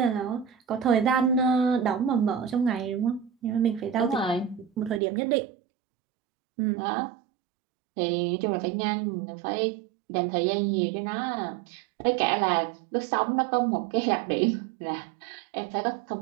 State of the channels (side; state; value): left; drops out; at 5.0 s